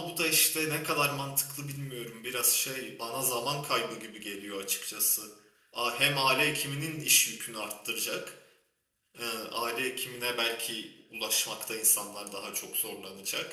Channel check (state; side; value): identical; both; correlation 1.00